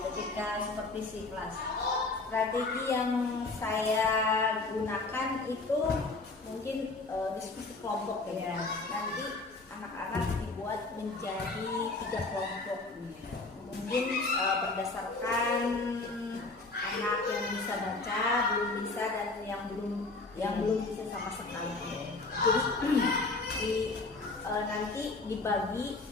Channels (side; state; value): right; quieter; 3.4 dB